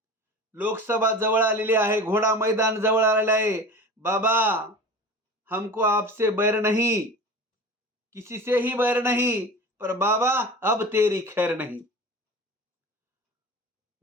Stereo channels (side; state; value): both; normal; correlation 0.35